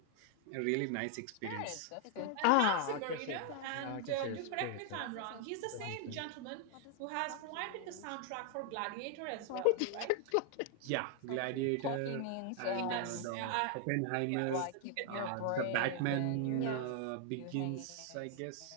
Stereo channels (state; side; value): different; both; correlation 0.00